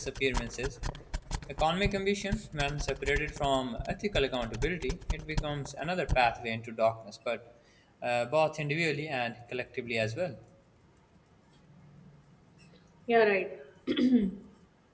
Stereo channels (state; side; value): identical; both; correlation 1.00